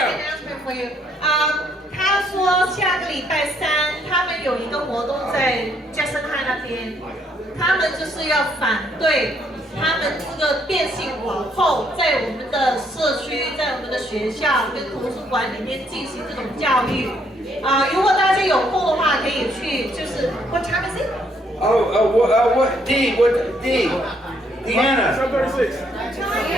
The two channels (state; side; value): normal; both; correlation 0.70